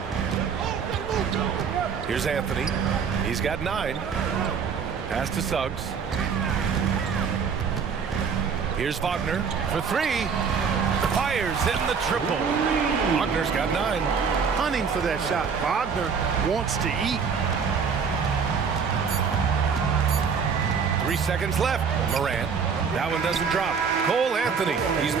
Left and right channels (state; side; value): quieter; left; 6.1 dB